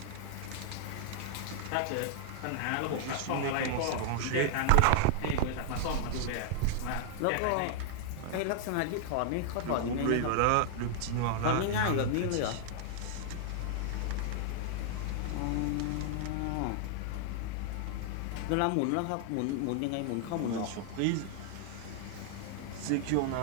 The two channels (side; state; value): both; different; correlation 0.00